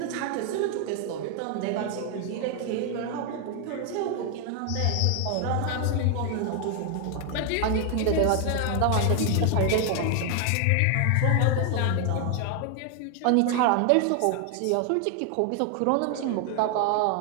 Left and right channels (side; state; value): both; different; correlation 0.00